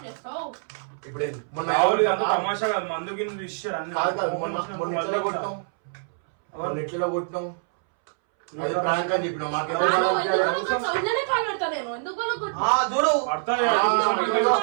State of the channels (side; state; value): left; silent; 62 dB below the other